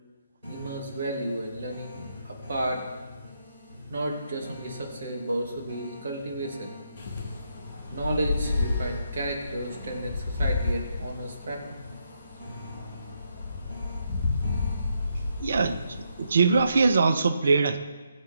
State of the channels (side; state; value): both; inverted; correlation -0.79